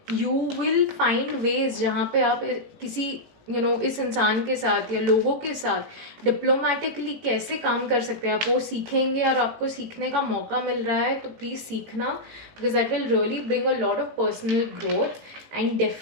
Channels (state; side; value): late; left; 18 ms